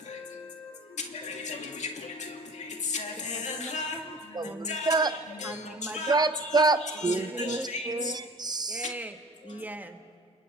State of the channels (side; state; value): both; normal; correlation 0.42